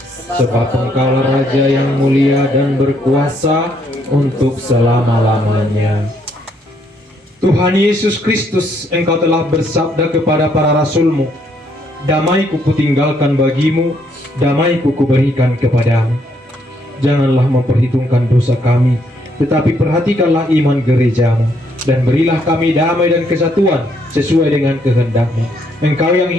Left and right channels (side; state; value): both; normal; correlation 0.71